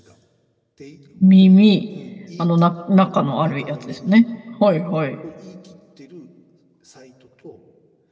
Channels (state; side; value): identical; both; correlation 1.00